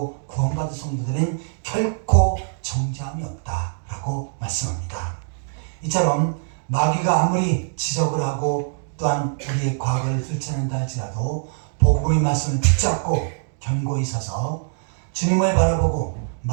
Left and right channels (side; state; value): left; silent; digital silence